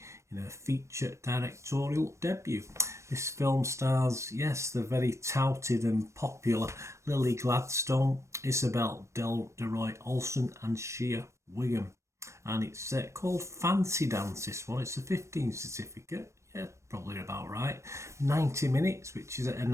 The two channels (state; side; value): late; left; 0.14 ms